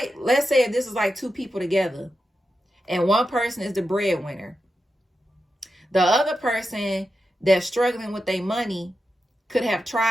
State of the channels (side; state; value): both; normal; correlation 0.89